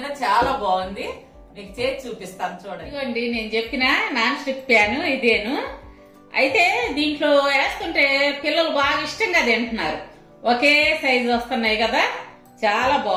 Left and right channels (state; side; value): identical; both; correlation 1.00